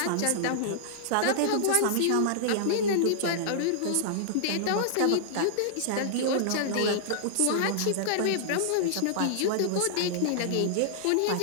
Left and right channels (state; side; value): different; both; correlation -0.02